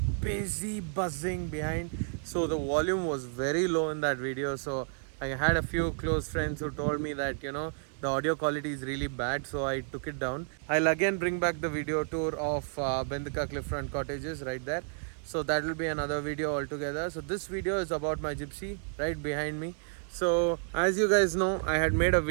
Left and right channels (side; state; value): left; silent; 57 dB below the other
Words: busy buzzing behind, so the volume was very low in that video. So I had a few close friends who told me that the audio quality is really bad, so I took it down. I'll again bring back the video tour of Bendika Cliffront Cottages right there. So that will be another video altogether. So this video is about my Gypsy right behind me. So as you guys know, I had made a